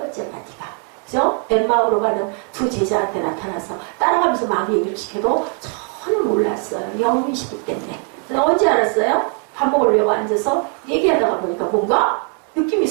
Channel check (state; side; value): quieter; left; 38.5 dB